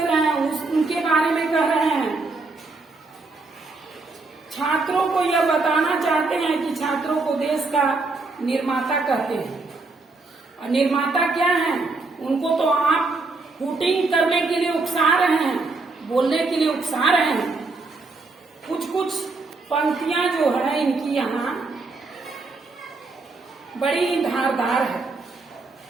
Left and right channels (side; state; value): left; quieter; 3.6 dB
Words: रहे हैं उनके बारे में कह रहे हैं, छात्रों को यह बताना चाहते हैं कि छात्रों को देश का निर्माता कहते हैं। और निर्माता क्या है? उनको तो आप हुटिंग करने के लिए उकसा रहे हैं, बोलने के लिए उकसा रहे हैं। कुछ कुछ पंक्तियां जो है इनकी यहाँ बड़ी ही धारदार है।